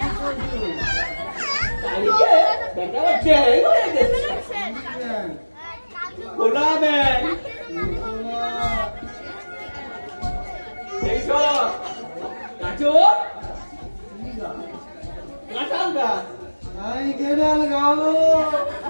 হয়ে গেছে গোলামেন এইসব গাছর কাঁঠাল গাছ আমি কেনাল গাবো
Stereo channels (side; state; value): both; inverted; correlation -1.00